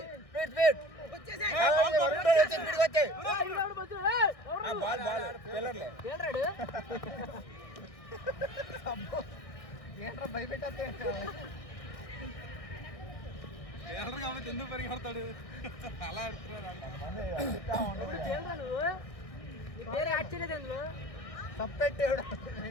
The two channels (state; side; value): late; right; 1.6 ms